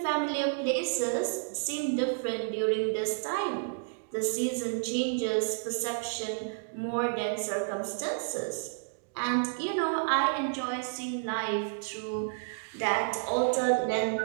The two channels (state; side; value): silent; left; digital silence